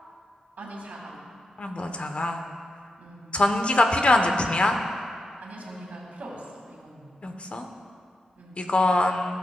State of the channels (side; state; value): both; normal; correlation 0.86